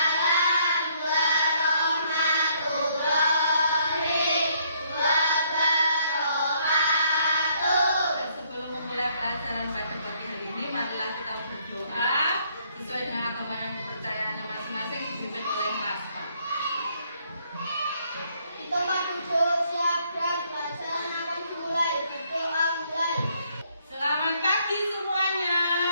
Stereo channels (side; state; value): both; inverted; correlation -0.68